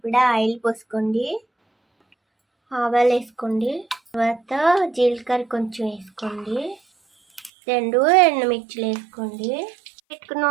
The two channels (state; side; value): drops out; left; at 7.5 s